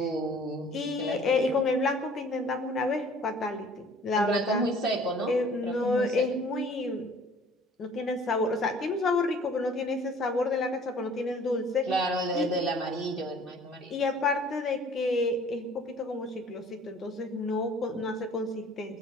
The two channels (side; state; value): both; normal; correlation 0.52